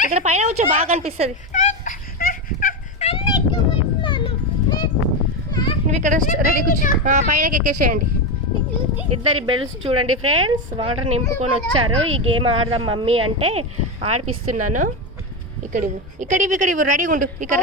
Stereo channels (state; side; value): normal; both; correlation 0.13